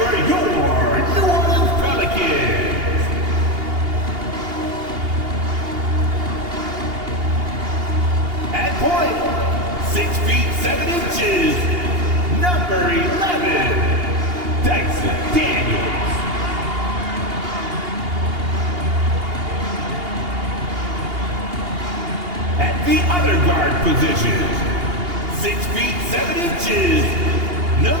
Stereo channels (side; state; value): left; late; 2.8 ms